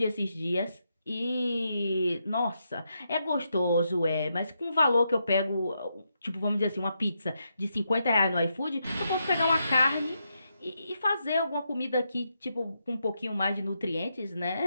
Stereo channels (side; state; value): both; inverted; correlation -0.82